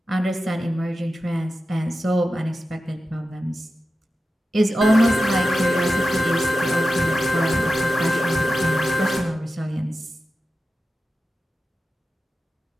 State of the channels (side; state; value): both; normal; correlation 0.93